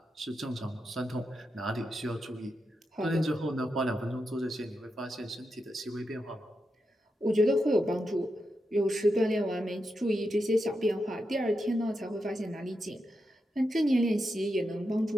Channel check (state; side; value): normal; both; correlation 0.86